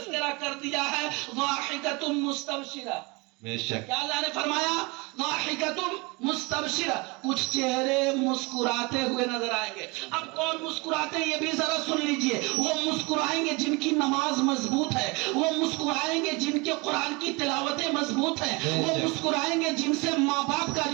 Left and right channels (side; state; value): left; quieter; 26.9 dB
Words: کر دیا ہے، ضاحکۃ مستبشرہ۔ بے شک۔ کیا اللہ نے فرمایا؟ ضاحکۃ مستبشرہ، کچھ چہرے مسکراتے ہوئے نظر آئیں گے۔ اب کون مسکراتے ہیں یہ بھی ذرا سن لیجئے۔ وہ مسکرائیں گے جن کی نماز مضبوط ہے، وہ مسکرائیں گے جن کے قرآن کی تلاوتیں مضبوط ہیں، وہ مسکرائیں گے جن سے ماں باپ کا